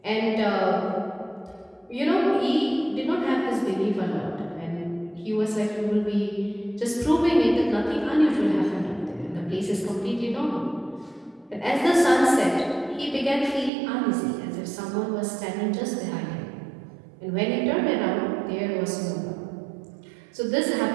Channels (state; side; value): drops out; left; at 13.7 s